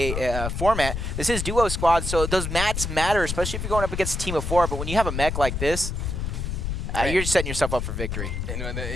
format, this is duo squads, so those mats matter, especially if you're going up against a team of 4. But when you have a mech like this, you're just setting yourself up for victory. And the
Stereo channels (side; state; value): left; noise; rumble, 3 dB below the sound